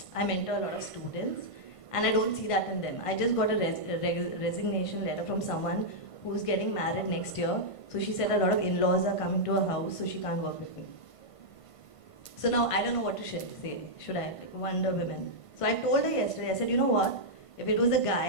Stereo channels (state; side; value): late; right; 1.5 ms